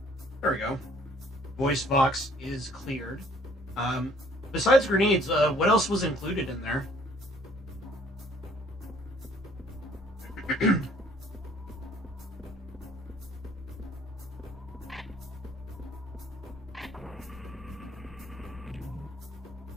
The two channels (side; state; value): both; normal; correlation 0.59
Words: There we go. Voice box is cleared. Besides grenades, what else was included in there?